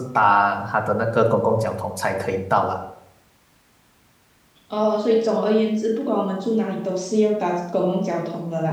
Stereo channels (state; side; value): identical; both; correlation 1.00